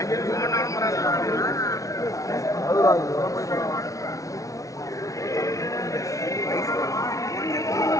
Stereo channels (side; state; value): right; late; 0.16 ms